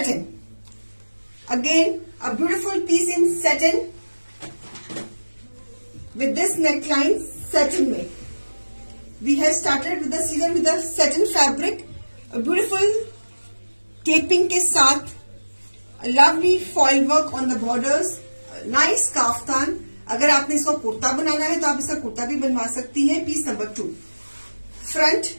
Again, a beautiful piece in satin with this neckline satin में. We have started with the season with the satin fabric, a beautiful taping के साथ, a lovely foil work on the borders, a nice kaftan. अगर आपने इसको कुर्ता बनाना है तो आप इसका कुर्ता भी बनवा सकती हैं. Piece number 2. Front.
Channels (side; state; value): both; inverted; correlation -1.00